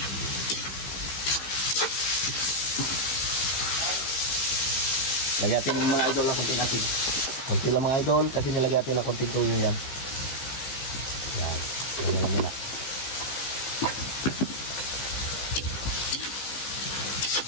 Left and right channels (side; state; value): right; late; 15 ms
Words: Lagyan natin mga idol ng konting asin. Konti lang mga idol kasi nilagyan natin ng konting tuyo yan. Yan. Yan na muna.